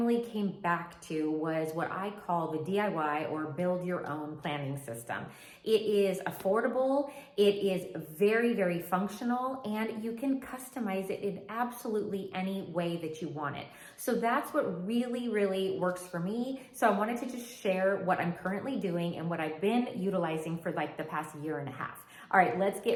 came back to was what I call the DIY or build your own planning system. It is affordable, it is very, very functional, and you can customize it in absolutely any way that you want it. So that's what really, really works for me. So I wanted to just share what I'm currently doing and what I've been utilizing for like the past year and a half. All right, let's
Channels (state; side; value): identical; both; correlation 1.00